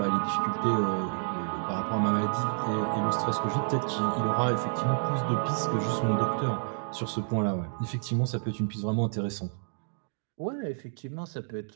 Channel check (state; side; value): silent; left; digital silence